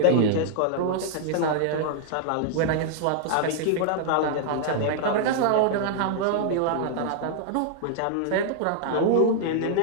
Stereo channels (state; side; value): different; both; correlation -0.01